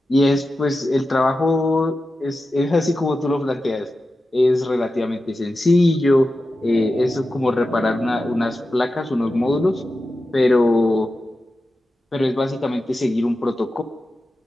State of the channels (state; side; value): normal; both; correlation 0.92